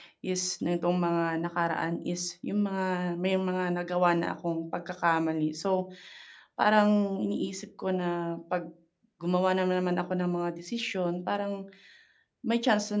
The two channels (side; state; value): both; identical; correlation 1.00